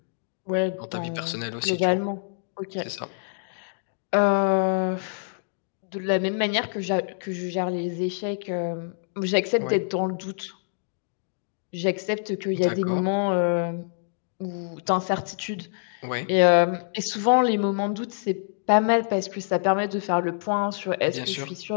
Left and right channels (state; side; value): silent; right; digital silence